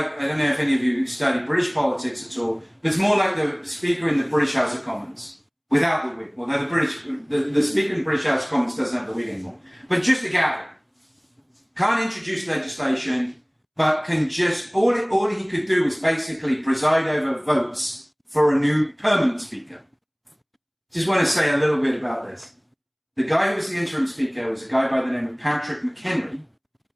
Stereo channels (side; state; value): both; identical; correlation 1.00